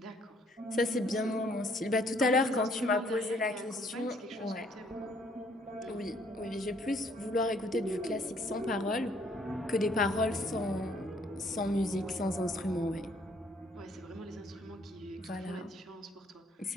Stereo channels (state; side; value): normal; both; correlation 0.64